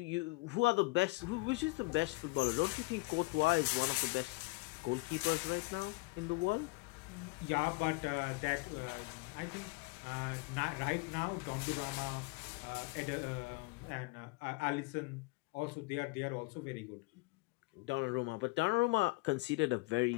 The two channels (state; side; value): quieter; right; 25.3 dB